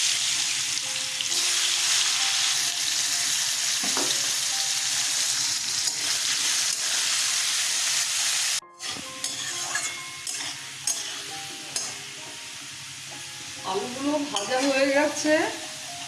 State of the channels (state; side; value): identical; both; correlation 1.00